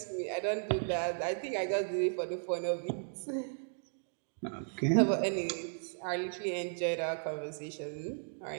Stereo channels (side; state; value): left; silent; digital silence